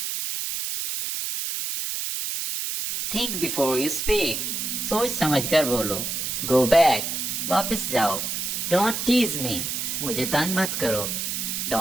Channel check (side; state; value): right; noise; hiss, 3 dB below the sound